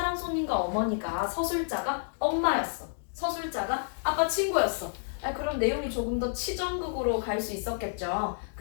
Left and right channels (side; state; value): right; silent; digital silence